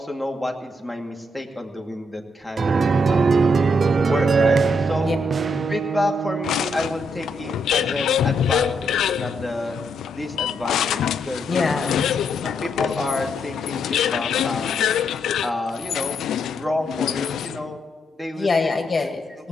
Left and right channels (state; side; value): normal; both; correlation 0.77